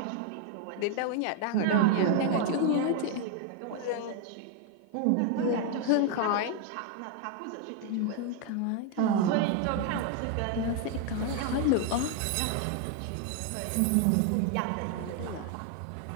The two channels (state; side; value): different; both; correlation 0.01